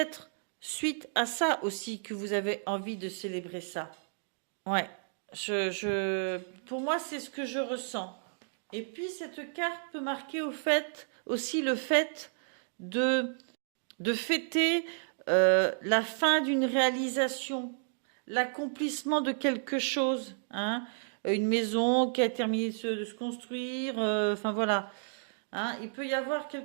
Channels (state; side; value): silent; left; digital silence